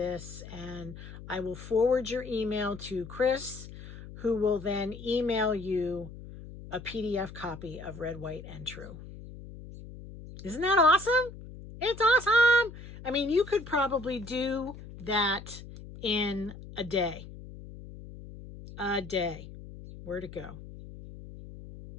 and I will forward your email to Chris, who will then email you a PDF copy of Red, White, and True. Isn't that awesome? It's awesome. I mean, you could probably do that in a day. A day. Where'd it go?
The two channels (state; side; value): noise; left; hum, 14 dB below the sound